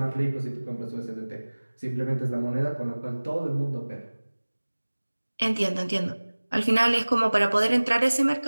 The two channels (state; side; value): inverted; both; correlation -1.00